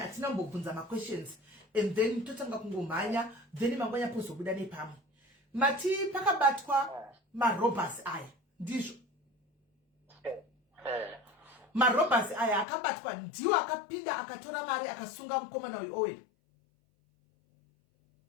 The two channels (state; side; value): drops out; right; at 12.7 s